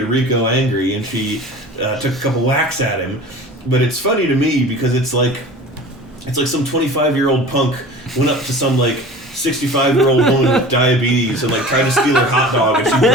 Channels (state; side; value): normal; both; correlation 0.39